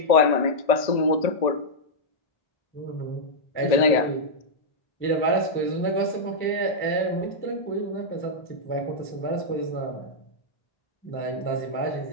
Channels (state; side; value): late; right; 1.8 ms